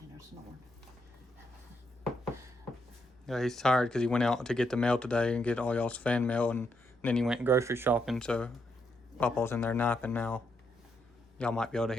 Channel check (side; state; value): both; normal; correlation 0.79